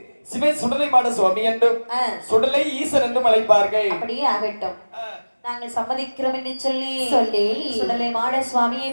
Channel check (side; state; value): both; inverted; correlation -1.00